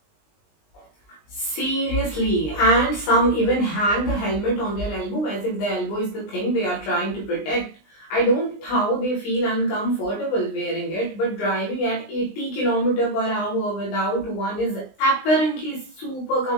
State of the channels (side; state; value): right; late; 20 ms